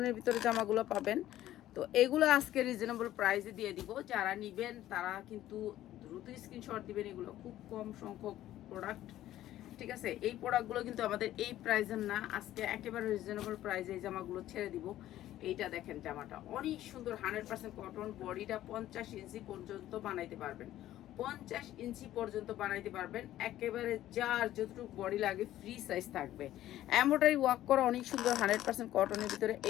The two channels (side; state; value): right; quieter; 13.6 dB